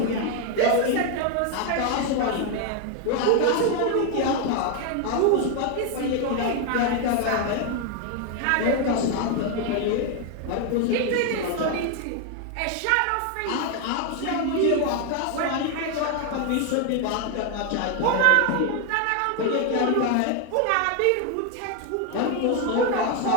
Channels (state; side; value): different; both; correlation 0.01